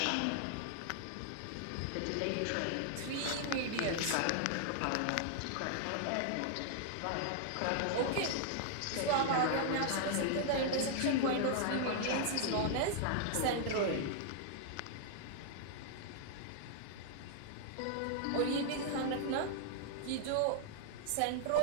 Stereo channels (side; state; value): both; different; correlation -0.01